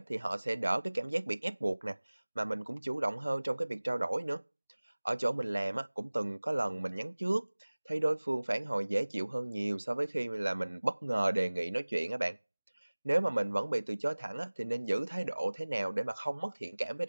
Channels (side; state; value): both; inverted; correlation -1.00